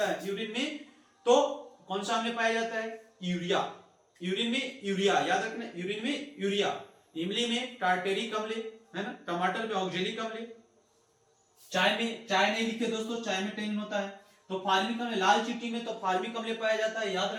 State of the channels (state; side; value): identical; both; correlation 1.00